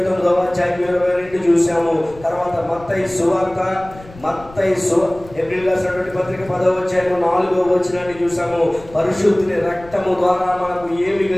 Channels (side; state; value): left; noise; rumble, 20 dB below the sound